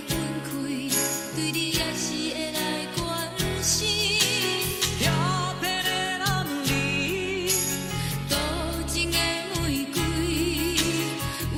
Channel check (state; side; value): identical; both; correlation 1.00